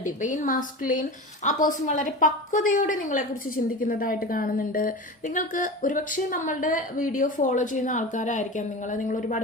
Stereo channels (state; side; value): normal; both; correlation 0.29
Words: divine masculine. ആ പേഴ്സൺ വളരെ പക്വതയോടെ നിങ്ങളെക്കുറിച്ച് ചിന്തിക്കുന്നതായിട്ട് കാണുന്നുണ്ട്. നിങ്ങൾക്ക് ഒരുപക്ഷെ നമ്മളുടെ വീഡിയോ ഫോളോ ചെയ്യുന്ന ആൾക്കാരായിരിക്കാം നിങ്ങൾ